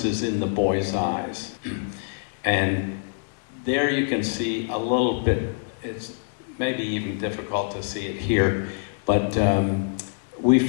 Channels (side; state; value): right; silent; digital silence